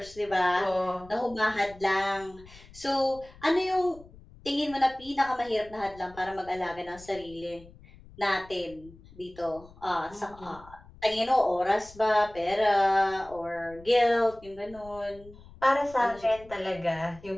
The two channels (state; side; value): noise; left; rumble, 21 dB below the sound